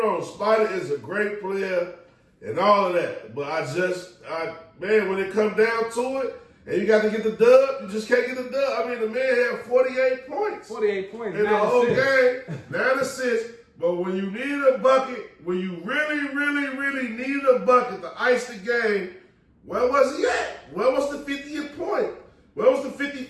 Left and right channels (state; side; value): identical; both; correlation 1.00